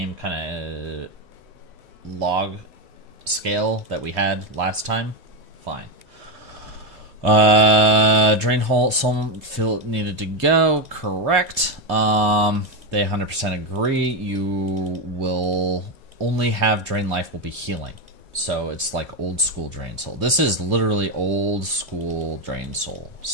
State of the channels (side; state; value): left; late; 2.0 ms